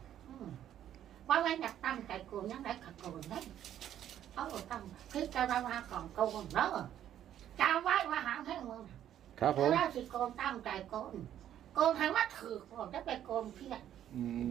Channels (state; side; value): quieter; left; 10.9 dB